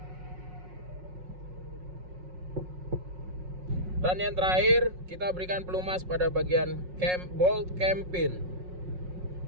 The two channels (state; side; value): late; left; 5.5 ms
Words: Dan yang terakhir, kita berikan pelumas pada bagian bolt cam pin.